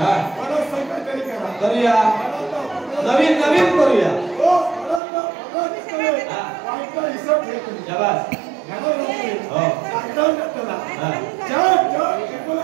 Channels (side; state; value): left; drops out; at 5.0 s